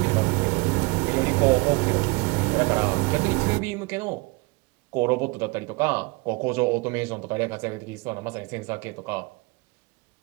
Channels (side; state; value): left; quieter; 25.6 dB